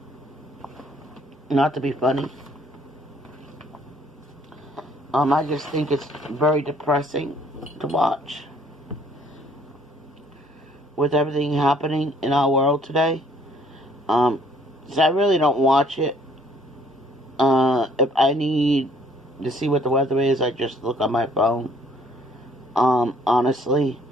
Not to be funny. I just think it's very depressing to watch. With everything happening in our world today. So I really don't watch it. If I need to see what the weather is, I just look on my phone. Honestly.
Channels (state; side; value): normal; both; correlation 0.61